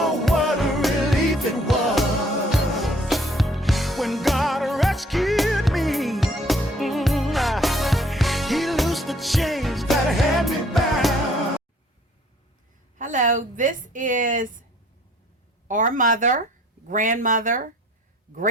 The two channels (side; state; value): both; normal; correlation 0.58